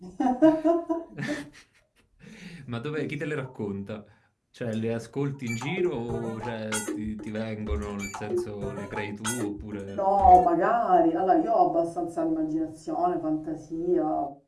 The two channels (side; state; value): both; identical; correlation 1.00